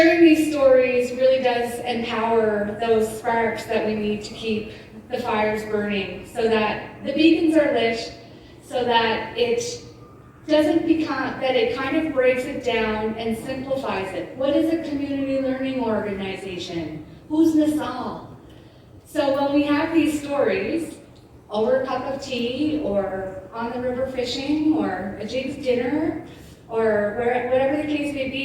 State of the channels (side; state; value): both; identical; correlation 1.00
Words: these stories really does empower those sparks that we need to keep the fires burning so that the beacons are lit, so that it doesn't become, that it kind of breaks it down and simplifies it. What is a community learning organization? Who's Nassau? So when we have these stories, over a cup of tea, or on the river fishing, or a Jig's dinner, or whatever the case may